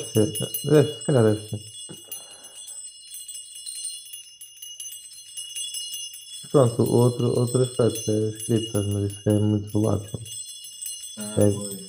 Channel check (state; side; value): identical; both; correlation 1.00